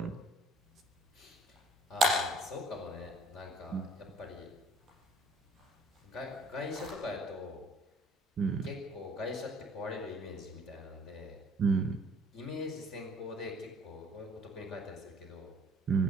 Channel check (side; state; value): both; normal; correlation 0.55